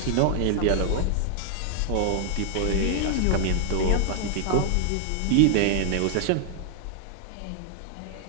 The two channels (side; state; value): both; different; correlation 0.00